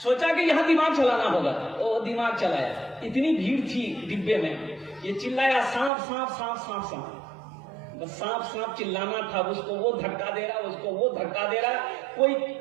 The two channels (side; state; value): left; drops out; at 5.9 s